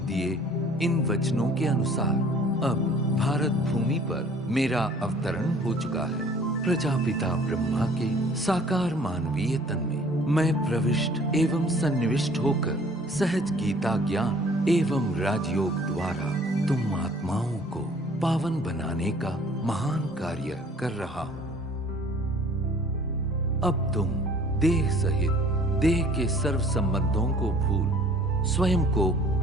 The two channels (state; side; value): normal; both; correlation 0.53